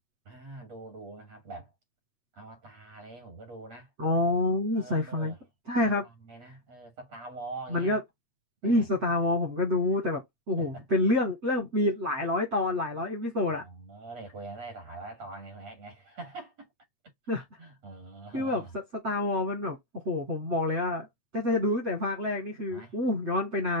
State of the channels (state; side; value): late; left; 8.5 ms